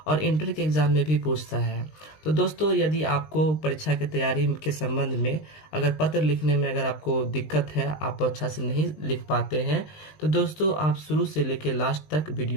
और इंटर के एग्ज़ाम में भी पूछता है। तो दोस्तों यदि आपको परीक्षा की तैयारी के संबंध में अगर पत्र लिखने में अगर आपको दिक्कत है, आप अच्छा से नहीं लिख पाते हैं, तो दोस्तों आप शुरू से लेकर लास्ट तक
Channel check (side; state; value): right; late; 19 ms